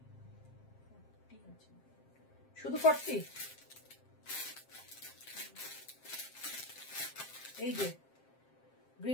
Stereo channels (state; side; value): late; right; 7.6 ms